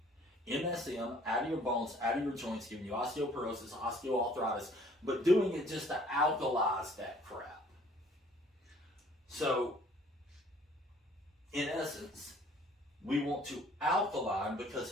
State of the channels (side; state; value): both; normal; correlation 0.57